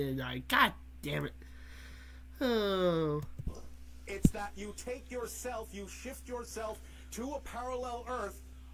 I? God damn it. Oh. It's that you take yourself, you shift yourself to a parallel Earth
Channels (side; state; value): both; identical; correlation 1.00